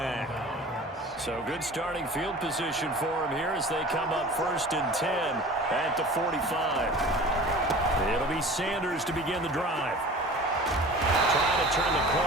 So good starting field position for him here as they come up first and 10 at the 45. It'll be Sanders to begin the drive. Trying to turn the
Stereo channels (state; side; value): normal; both; correlation 0.41